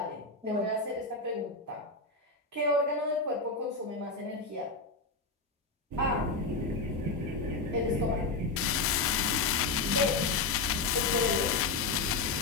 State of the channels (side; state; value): right; quieter; 3.8 dB